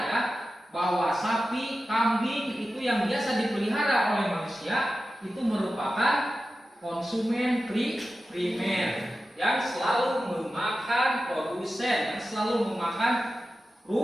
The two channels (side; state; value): both; normal; correlation 0.93